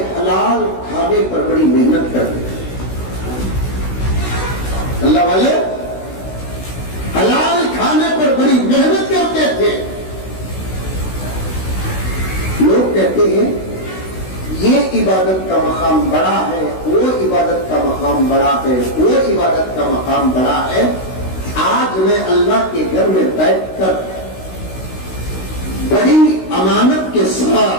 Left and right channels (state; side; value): late; right; 16 ms